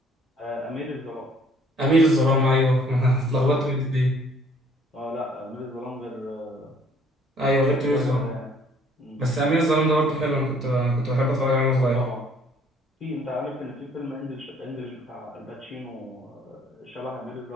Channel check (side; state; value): both; normal; correlation 0.59